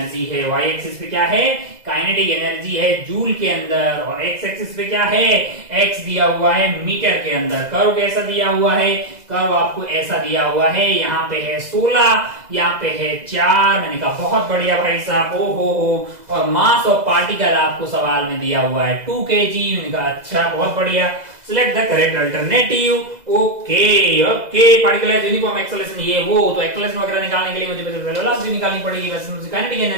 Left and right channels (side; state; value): left; late; 2.0 ms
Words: है। वाई एक्सिस पे क्या है? काइनेटिक एनर्जी है जूल के अंदर, और एक्स एक्सिस पे क्या है? एक्स दिया हुआ है मीटर के अंदर। कर्व कैसा दिया हुआ है? कर्व आपको ऐसा दिया हुआ है, यहाँ पे है 16, यहाँ पे है 4। मैंने कहा बहुत बढ़िया भाई साहब, ओ हो। और मास ऑफ पार्टिकल आपको सवाल में दिया हुआ है 2 kg। मैंने कहा अच्छा बहुत बढ़िया, select the correct alternative. Okay okay, particle है यूनिफॉर्म एक्सेलरेशन, ये वो। तो एक्सेलरेशन वगैरह निकालने के लिए मुझे वेलोसिटी निकालनी पड़ेगी। वैसे मुझे काइनेटिक